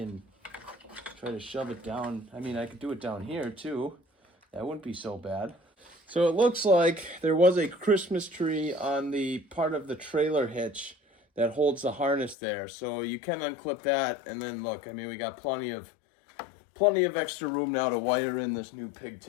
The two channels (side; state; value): right; drops out; at 12.4 s